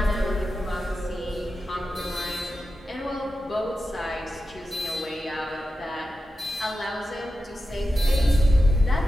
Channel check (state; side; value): normal; both; correlation 0.91